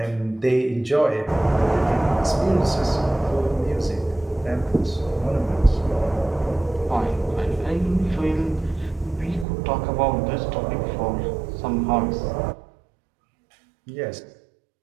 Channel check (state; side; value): drops out; left; at 9.5 s